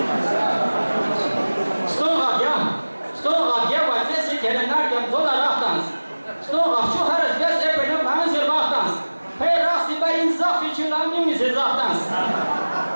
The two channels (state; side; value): inverted; both; correlation -1.00